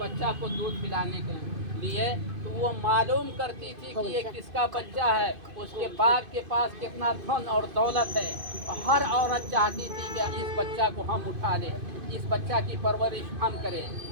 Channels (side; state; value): left; late; 2.5 ms